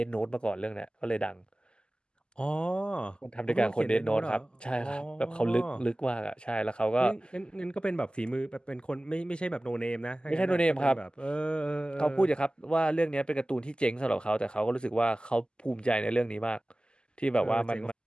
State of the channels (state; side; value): late; right; 0.048 ms